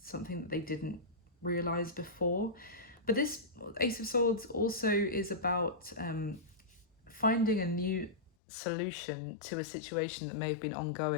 that they didn't realize before. But this Ace of Swords also is about finding a new solution to a situation that may have been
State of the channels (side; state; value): right; drops out; at 8.3 s